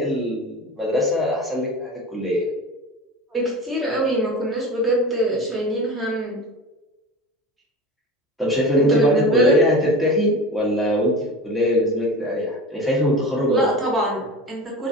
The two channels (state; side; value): normal; both; correlation 0.32